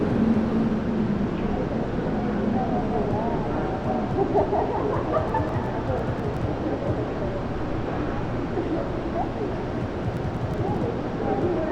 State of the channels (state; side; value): identical; both; correlation 1.00